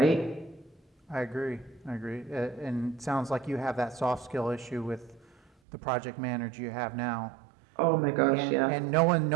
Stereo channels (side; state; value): left; drops out; at 5.5 s